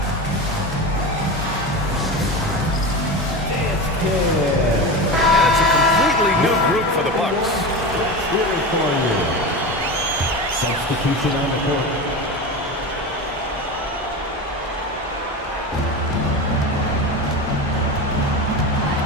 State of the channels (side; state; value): both; normal; correlation 0.25